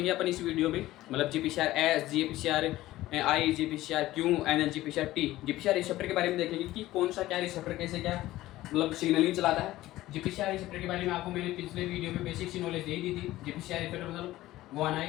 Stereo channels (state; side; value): quieter; right; 16.2 dB